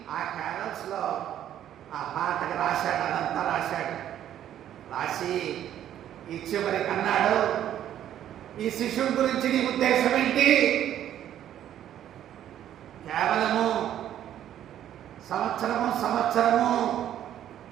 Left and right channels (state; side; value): quieter; left; 11.1 dB